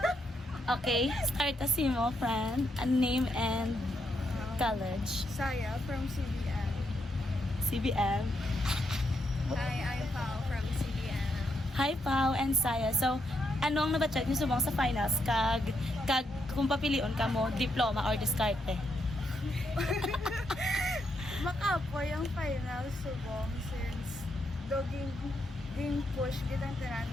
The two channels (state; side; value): normal; both; correlation 0.80